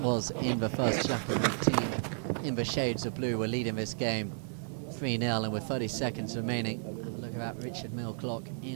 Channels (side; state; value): left; silent; digital silence